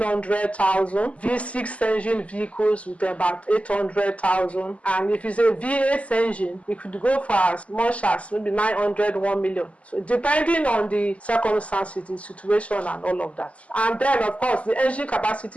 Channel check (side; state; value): right; late; 0.065 ms